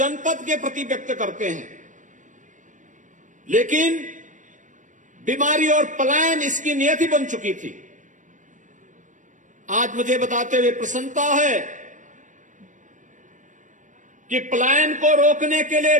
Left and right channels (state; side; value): late; left; 0.37 ms